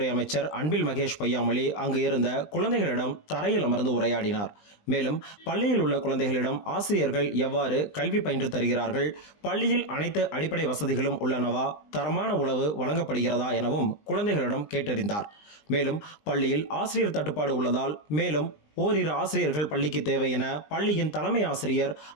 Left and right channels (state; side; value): late; right; 20 ms